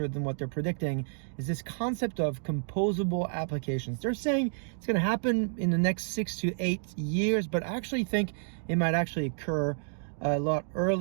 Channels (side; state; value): left; silent; digital silence